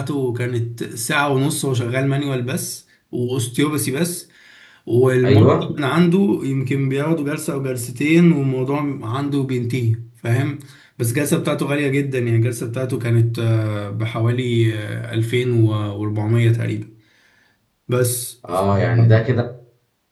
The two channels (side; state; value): both; identical; correlation 1.00